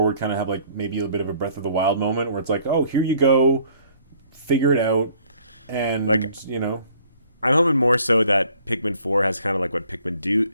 would kind of have like maybe a bit of a Breath of the Wild moment where it's like, oh, here you go, figure it out, and like, I'm hoping more so that Pikmin 4 has kind of like what Pikmin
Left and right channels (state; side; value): inverted; both; correlation -0.59